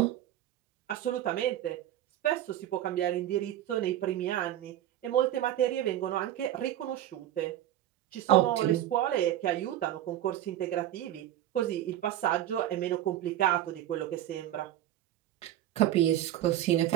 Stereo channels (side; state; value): left; quieter; 12.6 dB